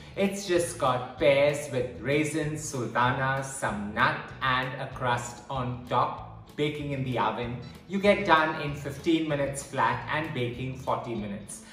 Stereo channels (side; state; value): both; identical; correlation 1.00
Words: It's just got pears with raisins, sultanas, some nut and a crust on top, baking in the oven. You get done in 15 minutes flat and baking 40 minutes.